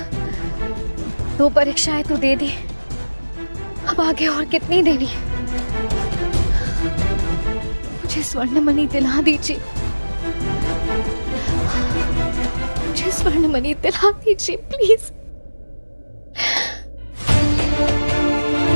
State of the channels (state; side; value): inverted; both; correlation -1.00